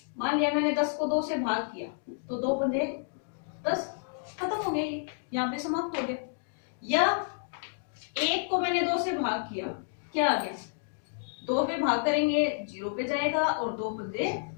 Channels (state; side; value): silent; right; digital silence